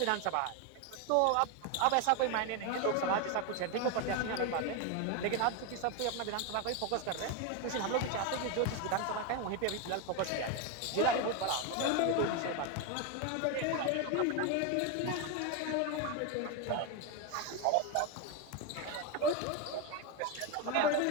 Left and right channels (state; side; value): different; both; correlation 0.02